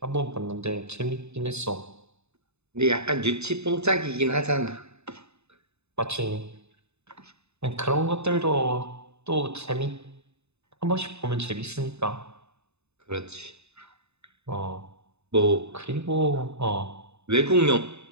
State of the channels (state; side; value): late; left; 0.81 ms